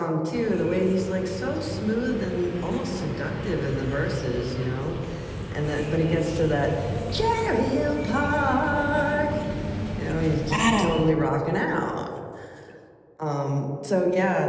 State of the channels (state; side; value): identical; both; correlation 1.00